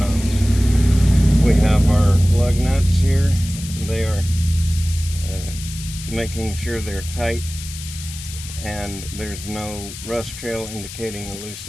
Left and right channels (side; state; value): left; noise; hiss, 12 dB below the sound